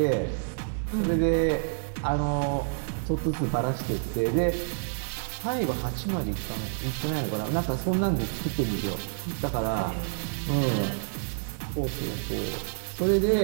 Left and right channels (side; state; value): left; silent; digital silence